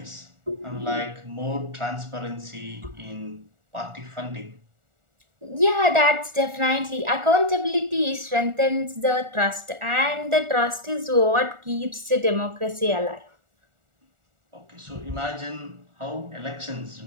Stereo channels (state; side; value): late; left; 1.4 ms